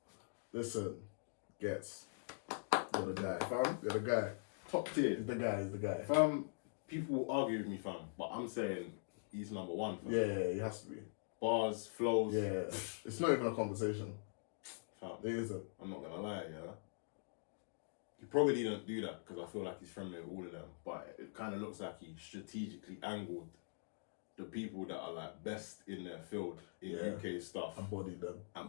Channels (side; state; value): right; silent; digital silence